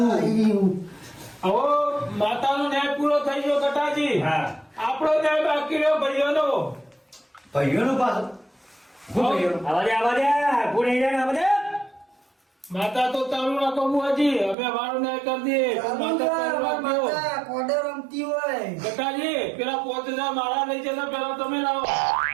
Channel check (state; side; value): drops out; left; at 14.6 s